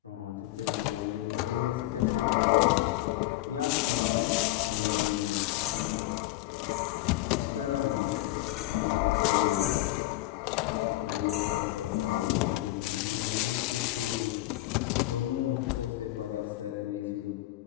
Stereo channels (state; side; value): quieter; right; 16.9 dB